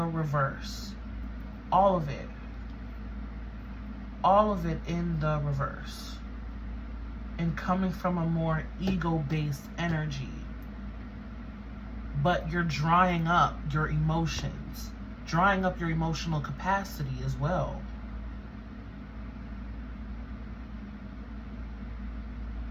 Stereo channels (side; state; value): both; identical; correlation 1.00